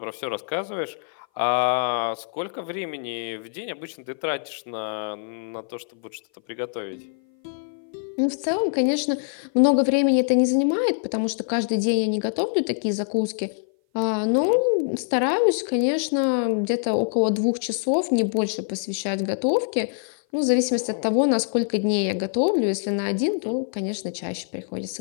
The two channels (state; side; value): silent; right; 57 dB below the other